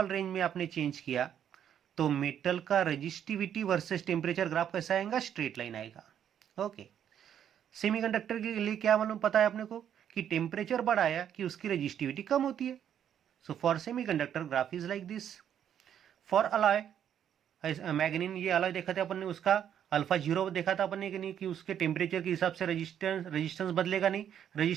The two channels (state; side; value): quieter; left; 9.4 dB